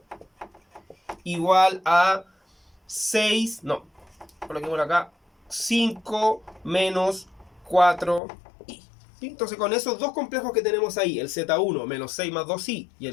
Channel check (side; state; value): right; drops out; at 8.2 s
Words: igual a 6, no, coloquemos acá, 5 menos 4i. ¿Sí? Entonces con esos dos complejos que tenemos ahí, el Z1 menos 6 más 2i y